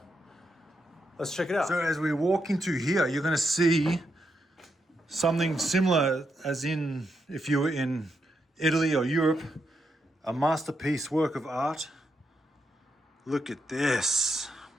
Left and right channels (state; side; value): normal; both; correlation 0.82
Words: Let's check it out. So as we walk into here, you're gonna see something similar as in if you were in Italy or Europe, a masterpiece work of art. Look at this.